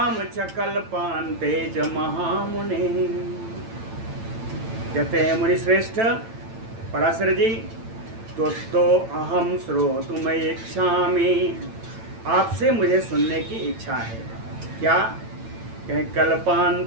च कल्पान्ते च महामुने। कहते हैं, मुनि श्रेष्ठ, पराशर जी, तो अहम श्रोतुम इच्छामि, आपसे मुझे सुनने की इच्छा है। क्या कहें?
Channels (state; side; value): late; left; 8.9 ms